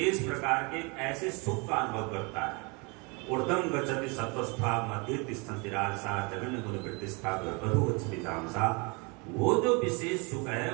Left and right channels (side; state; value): left; quieter; 30.3 dB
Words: प्रकार के ऐसे सुख का अनुभव करता है। ऊर्ध्वं गच्छति सत्वस्था, मध्ये तिष्ठन्ति राजसा, जगन्य गुण प्रतिष्ठा, अधो गच्छति तामसा। वो जो विशेष सुख है